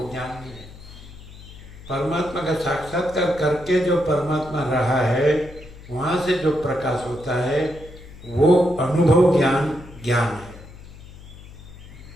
ज्ञान नहीं है। परमात्मा का साक्षात्कार करके जो परमात्मा रहा है, वहाँ से जो प्रकाश होता है वो अनुभव ज्ञान ज्ञान है।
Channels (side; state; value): left; noise; hum, 18 dB below the sound